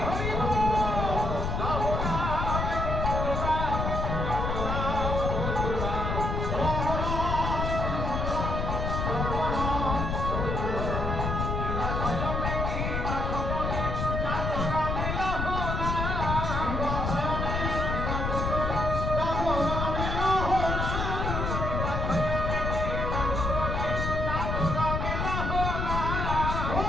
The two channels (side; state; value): left; noise; rumble, 1 dB below the sound